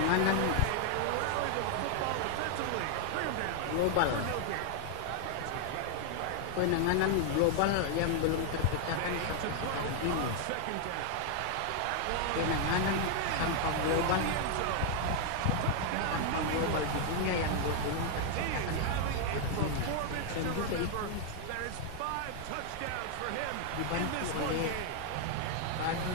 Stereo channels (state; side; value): different; both; correlation 0.00